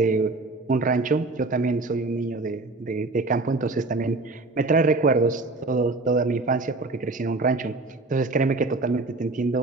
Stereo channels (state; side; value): quieter; left; 3.3 dB